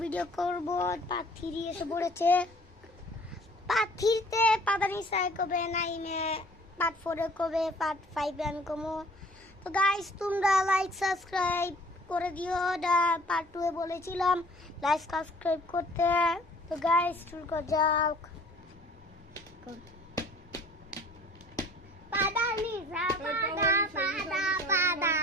ভিডিও করব। পার্ট 3 এসে পড়েছে। পার্ট 3 তে পাদানি সাই কবে, নাইনে পার্ট 4 এ কবে, পার্ট 5 এ আমি কমো। তো গাইস তোমরা লাইক সাবস্ক্রাইব করে দিও। পার্ট 2 এ বলেছিলাম লাইক সাবস্ক্রাইব করতে। তো গাইস শুরু করা যাক। পাদানি সা পাদা পাদা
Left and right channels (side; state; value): both; normal; correlation 0.52